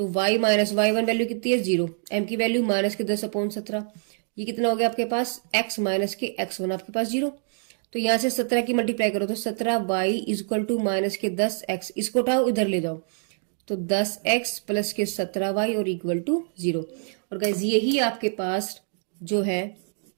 y माइनस y1 वैल्यू कितनी है 0, m की वैल्यू माइनस के 10/17, ये कितना हो गया आपके पास x माइनस के x1 आपके पास 0। तो यहां से 17 की मल्टीप्लाई करो तो 17y is equal to minus के 10x, इसको उठाओ इधर ले जाओ तो 10x प्लस के 17y और इक्वल टू 0। और गाइज यही आपके पास जो है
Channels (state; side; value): silent; left; 61 dB below the other